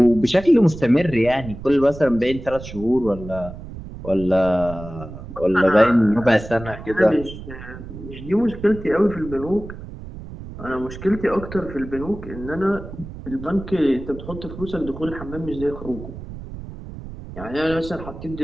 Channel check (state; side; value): noise; right; rumble, 12 dB below the sound